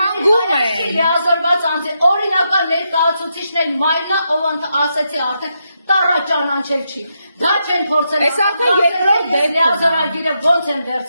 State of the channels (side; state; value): both; inverted; correlation -0.83